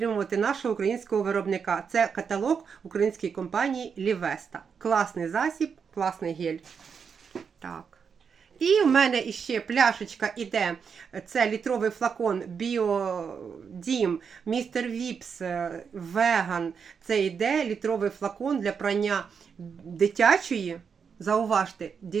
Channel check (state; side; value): quieter; left; 6.4 dB